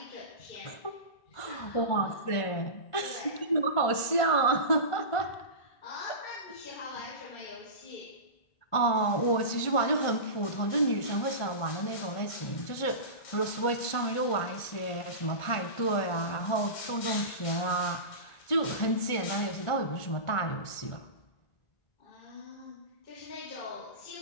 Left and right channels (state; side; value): late; right; 1.5 ms